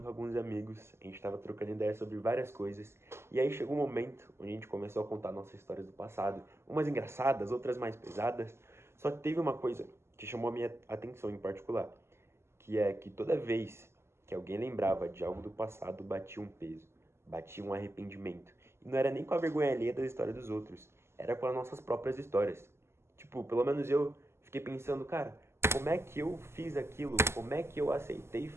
alguns amigos, a gente tava trocando ideias sobre várias coisas, e aí chegou um momento onde a gente começou a contar nossas histórias do passado, umas engraçadas, outras mais pesadas, só que teve uma coisa que chamou a minha atenção em particular, que é que toda vez que alguém lembrava de algo do passado, batia um peso, batia um arrependimento, e não era nem com a vergonha alheia da história dos outros, era com as nossas próprias histórias. Tipo, pelo menos eu fiquei pensando, cara, como é que eu fiz aquilo? Como é que eu aceitei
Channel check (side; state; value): left; late; 0.12 ms